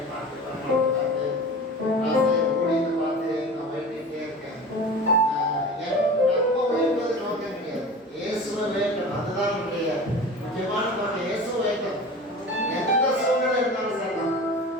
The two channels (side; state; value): both; normal; correlation 0.35